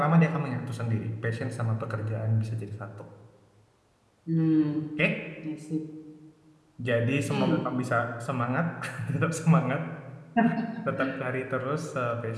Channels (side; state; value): both; identical; correlation 1.00